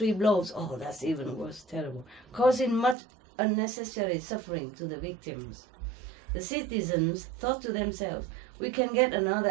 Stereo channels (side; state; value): left; drops out; at 3.0 s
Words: blows. Oh, that's even worse, terrible, causing much unnecessary suffering to the victims. The citizens thought to themselves, we can get another